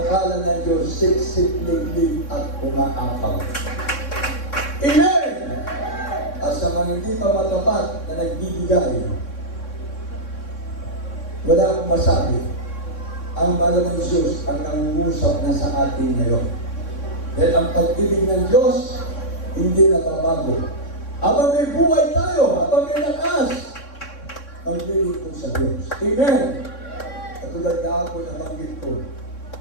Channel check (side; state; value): right; late; 3.6 ms